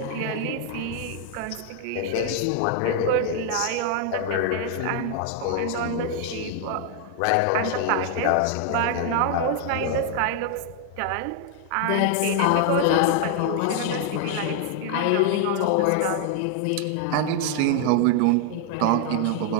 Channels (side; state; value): both; different; correlation 0.00